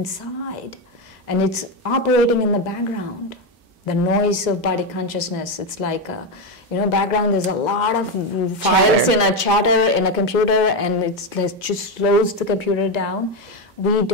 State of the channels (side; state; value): both; normal; correlation 0.10